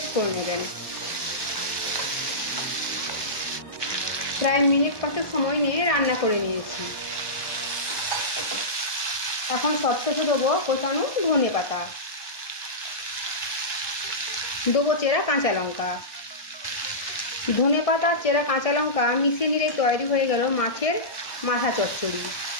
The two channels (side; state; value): right; late; 1.2 ms